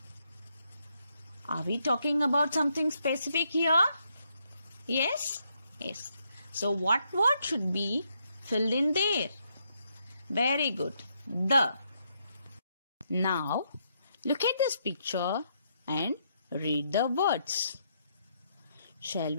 Are we talking about something specific here? Yes? Yes. So, what word should be filled in there? Very good. The. Now, look at this picture and read the words. Shall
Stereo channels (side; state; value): both; inverted; correlation -0.77